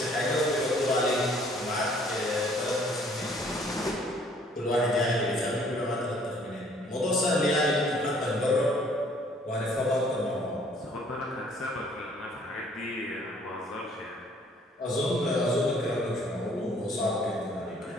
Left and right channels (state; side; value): normal; both; correlation 0.59